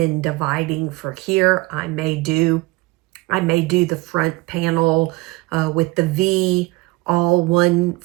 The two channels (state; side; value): quieter; left; 22.8 dB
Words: dividing for here. I may do the front panel with the V, all